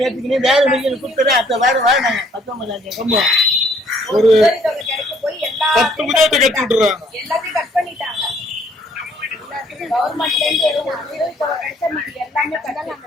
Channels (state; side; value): normal; both; correlation 0.63